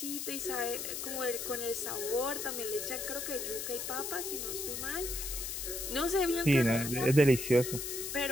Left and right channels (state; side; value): noise; left; hiss, 4 dB below the sound